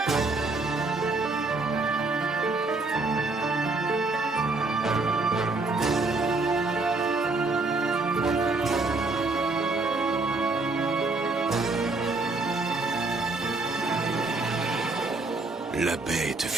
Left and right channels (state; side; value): quieter; left; 3.4 dB